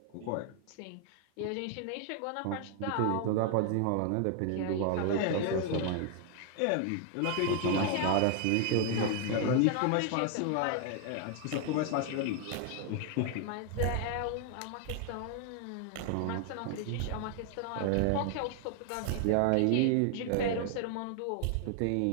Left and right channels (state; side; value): different; both; correlation 0.00